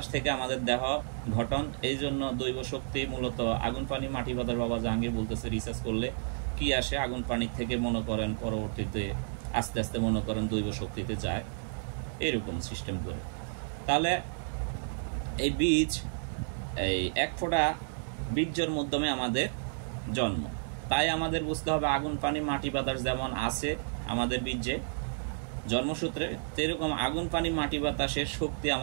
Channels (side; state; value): left; silent; digital silence